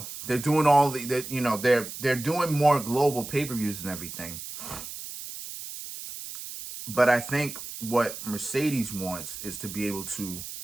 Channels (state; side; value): noise; right; hiss, 10 dB below the sound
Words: they're doing they're doing more global pay-per-views and everything. But I think what Mercedes wants is to be able to